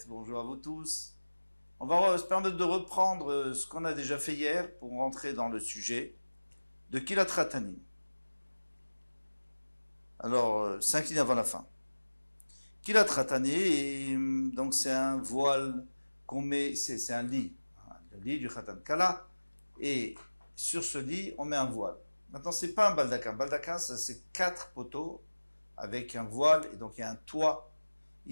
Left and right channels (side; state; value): both; inverted; correlation -1.00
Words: bonjour à vous tous. On va se permettre de reprendre ce qu'on a déjà fait hier pour rentrer dans le sujet de Kilat Ratanim. Alors, 5 lignes avant la fin. Kilat Ratanim, donc c'est un voile qu'on met, c'est un lit, le lit du Khatan Kala, et sur ce lit, on met un voile. Maintenant, c'est pas un baldaquin. Baldaquin, ça c'est 4 poteaux avec un voile, et donc il y a un toit.